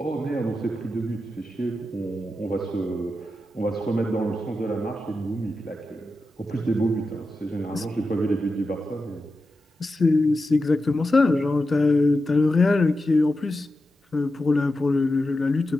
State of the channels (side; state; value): both; normal; correlation 0.90